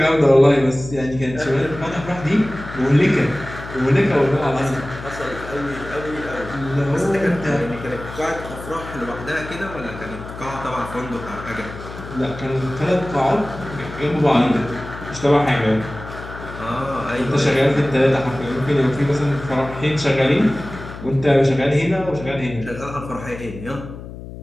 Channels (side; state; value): left; noise; hum, 12 dB below the sound